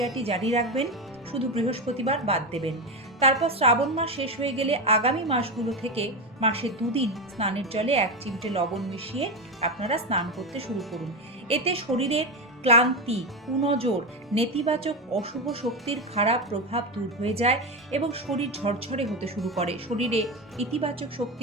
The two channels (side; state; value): both; normal; correlation 0.14